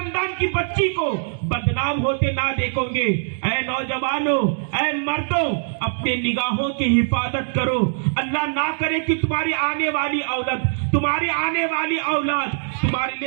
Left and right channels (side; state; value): left; silent; digital silence